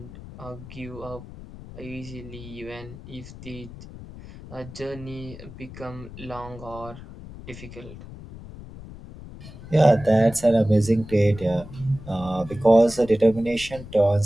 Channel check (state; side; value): noise; left; rumble, 15 dB below the sound